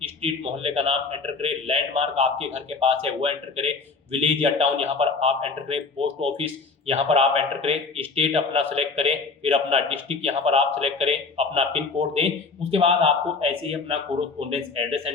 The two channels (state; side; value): quieter; right; 4.4 dB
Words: स्ट्रीट मोहल्ले का नाम एंटर करें, लैंडमार्क आपके घर के पास है वो एंटर करें, विलेज या टाउन यहाँ पर आप एंटर करें, पोस्ट ऑफिस यहाँ पर आप एंटर करें, स्टेट अपना सेलेक्ट करें, फिर अपना डिस्ट्रिक्ट यहाँ पर आप सेलेक्ट करें, अपना पिन कोड दें। उसके बाद आपको ऐसे ही अपना कोरोस्पोंडेंस एड्रेस